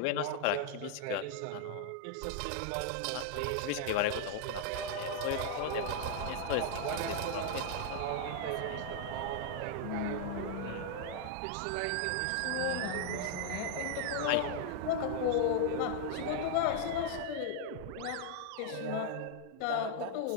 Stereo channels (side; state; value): both; different; correlation 0.00